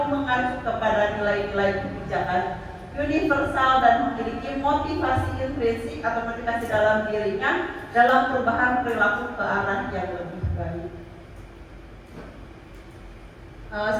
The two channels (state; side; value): identical; both; correlation 1.00